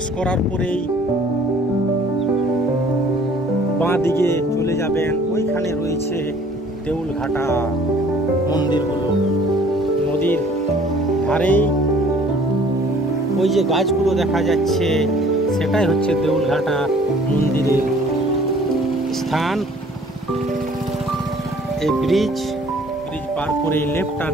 করার পরেই বাঁ দিকে চলে যাবেন। ওইখানে রয়েছে দেউলঘাটা মন্দিরগুলো, নদীর ধারেই ওই যে গাছগুলো দেখা যাচ্ছে, সেটাই হচ্ছে দেউলঘাটা মন্দিরের স্থান। এই ব্রিজ পার করে লেফট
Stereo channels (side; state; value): both; normal; correlation 0.54